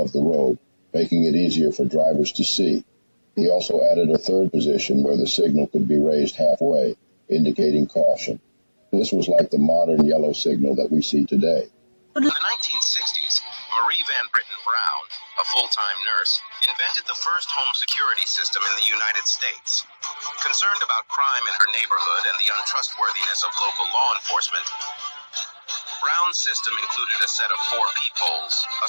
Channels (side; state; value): both; inverted; correlation -1.00